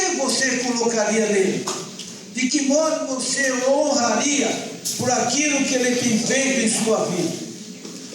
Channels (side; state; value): both; identical; correlation 1.00